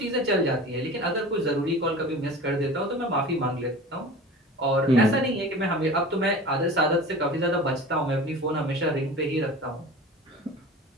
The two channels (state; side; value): normal; both; correlation 0.37